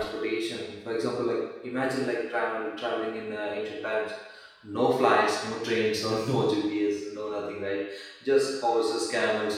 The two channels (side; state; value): both; identical; correlation 1.00